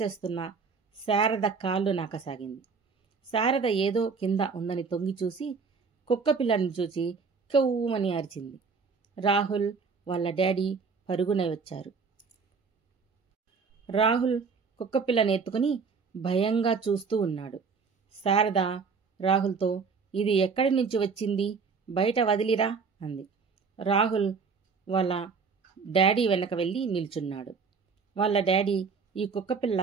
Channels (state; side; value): quieter; left; 5.2 dB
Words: చేస్తున్న శారద కాళ్ళు నాకసాగింది. శారద ఏదో కింద ఉందని తొంగి చూసి కుక్కపిల్లను చూసి కెవ్వుమని అరిచింది. రాహుల్ వాళ్ళ డాడీ పరుగున వచ్చారు. రాహుల్ కుక్కపిల్లని ఎత్తుకుని భయంగా చూస్తూ ఉన్నాడు. శారద రాహుల్తో, ఇది ఎక్కడి నుంచి వచ్చింది, బయట వదిలిరా అంది. రాహుల్ వాళ్ళ డాడీ వెనక వెళ్ళి నిల్చున్నాడు. వాళ్ళ డాడీ, ఈ కుక్కపిల్ల